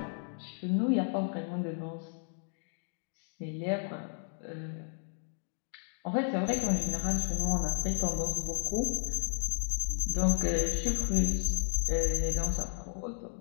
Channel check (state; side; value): silent; right; 56 dB below the other